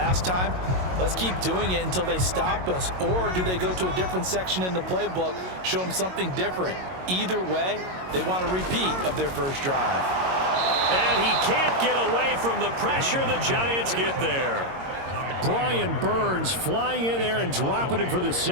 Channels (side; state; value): left; late; 22 ms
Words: time, let's keep doing it until they stop us? Or do they go to a different section in the playbook, show them something different? Either way, they want a repeat of their first drive. And he can't get away from the pressure. The Giants get there. Brian Burns flying in there and dropping him for the